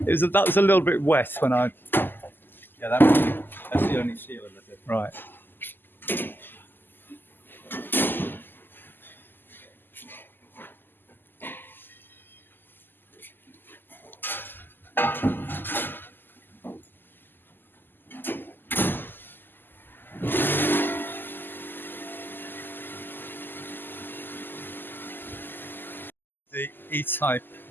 was a little bit wet when I. Yeah, that's the only seal of it. Right. The E-type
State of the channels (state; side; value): late; right; 0.093 ms